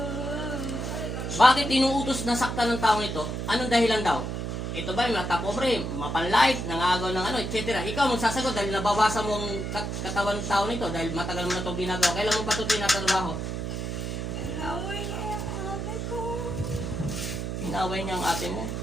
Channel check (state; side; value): noise; right; hum, 4 dB below the sound